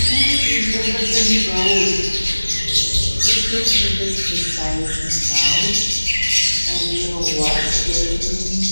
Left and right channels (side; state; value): both; inverted; correlation -1.00